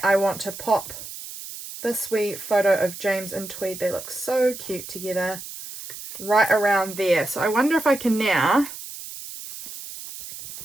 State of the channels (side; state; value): right; noise; hiss, 12 dB below the sound